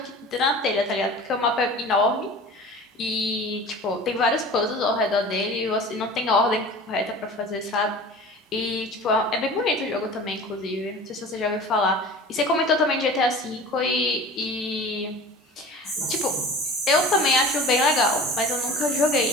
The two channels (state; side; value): normal; both; correlation 0.39